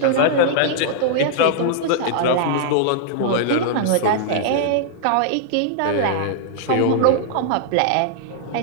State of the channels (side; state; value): both; different; correlation -0.01